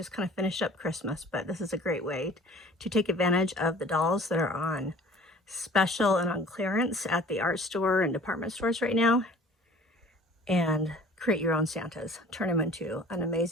kind of finished up Christmas, but this is a great way to take advantage of the dolls that are on special and on clearance at the art store and department stores right now, and create your own Santas. Turn them into an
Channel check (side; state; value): both; normal; correlation 0.48